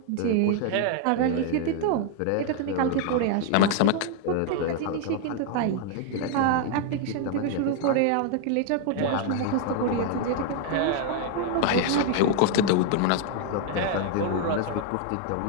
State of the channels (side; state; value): both; different; correlation 0.00